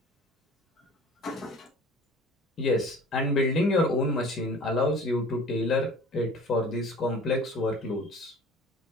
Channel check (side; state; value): both; normal; correlation 0.44